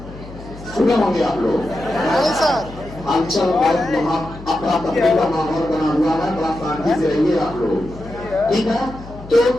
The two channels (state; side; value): noise; left; hum, 16 dB below the sound